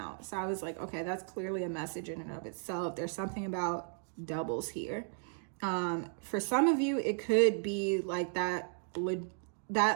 so I was like, okay, that's clearly a message in and of itself. There's something about doubles here. For some of you, it could be like that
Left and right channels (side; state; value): left; silent; 55 dB below the other